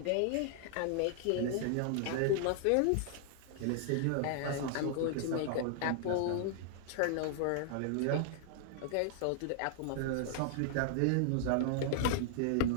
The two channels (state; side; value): different; both; correlation -0.01